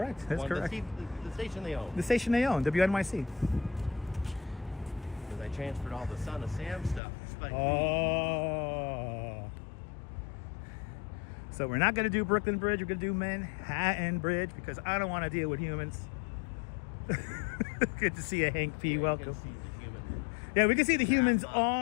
That's correct. The station they own. The station they own, WNYC. Because I transferred all the Son of Sam stuff. to Spike Lee. Oh. So we're not going to do Brooklyn Bridge. We're going to do Manhattan Bridge because I don't want to deal with humans. Good to see you, Hank P. You Welcome. can see the human. Yeah, we can see the humans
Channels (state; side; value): drops out; right; at 7.0 s